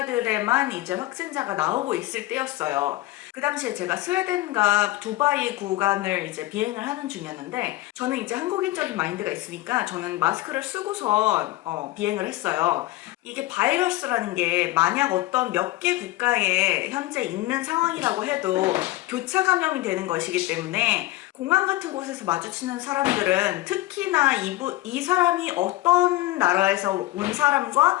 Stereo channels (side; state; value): right; quieter; 17.8 dB